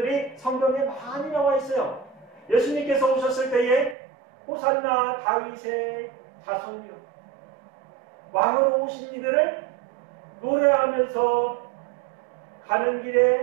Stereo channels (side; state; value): left; drops out; at 4.0 s